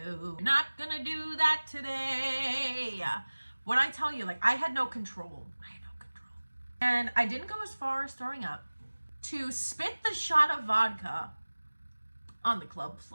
do that today. When I tell you, like, I had no control. And I didn't go as far as throwing up to spit the shot of vodka on the club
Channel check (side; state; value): both; inverted; correlation -1.00